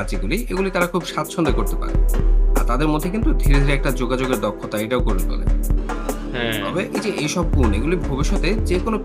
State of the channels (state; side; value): identical; both; correlation 1.00